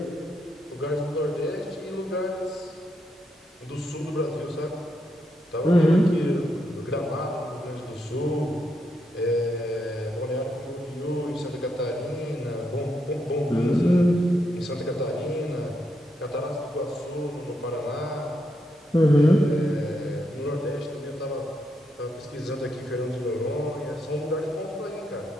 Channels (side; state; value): both; normal; correlation 0.81